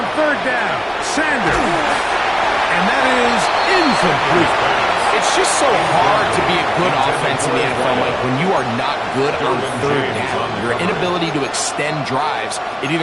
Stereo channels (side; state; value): both; identical; correlation 1.00